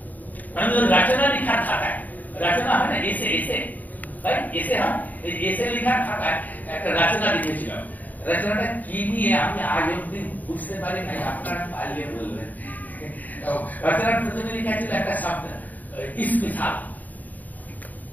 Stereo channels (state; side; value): late; right; 0.081 ms